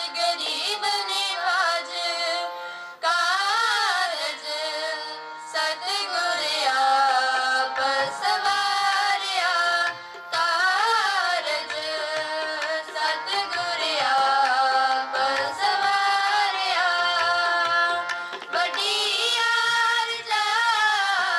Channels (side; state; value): both; identical; correlation 1.00